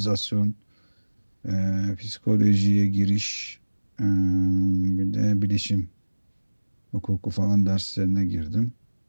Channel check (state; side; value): inverted; both; correlation -1.00